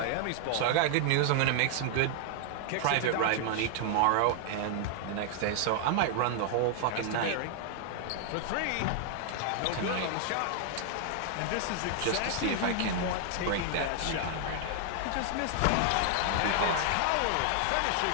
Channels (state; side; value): different; both; correlation 0.00